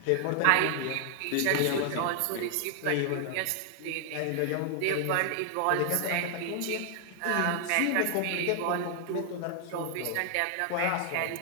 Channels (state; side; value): different; both; correlation 0.00